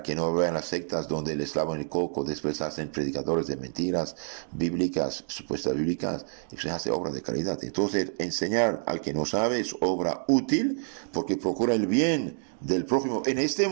que no vean las sectas donde les lavan el coco, después hacen predicadores de mentiras bíblicas, supuestas bíblicas, y se hace obra de caridad. Entonces, enseñar al que no sabe es obra útil porque procura el bien del prójimo en este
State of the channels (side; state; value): left; silent; digital silence